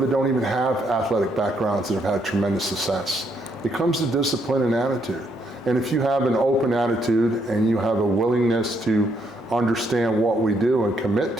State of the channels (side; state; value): both; normal; correlation 0.73